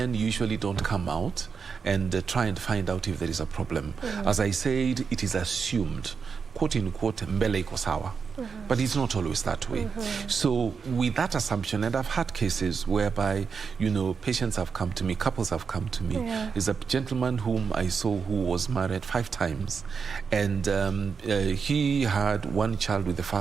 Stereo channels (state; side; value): quieter; left; 5.7 dB